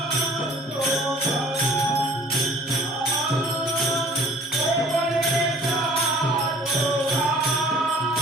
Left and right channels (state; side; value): normal; both; correlation 0.51